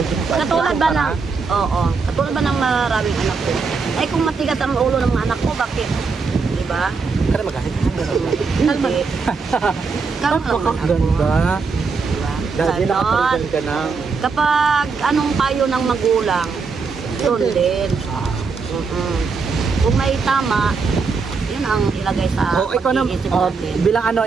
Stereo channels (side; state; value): left; quieter; 4.8 dB